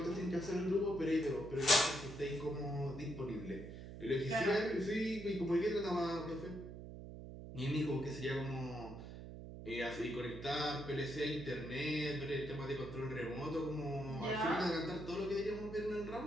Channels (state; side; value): noise; right; hum, 11 dB below the sound